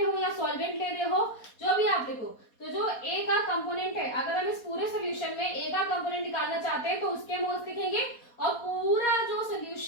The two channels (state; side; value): late; right; 4.2 ms